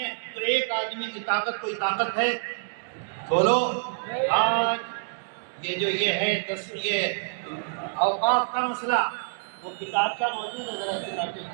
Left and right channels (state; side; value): silent; left; digital silence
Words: ہے تو ایک آدمی کی طاقت کوئی طاقت ہے؟ بولو۔ آج یہ ہے یہ اوقاف کا مسئلہ، وہ کتاب کا موجود ہے، ذرا کتاب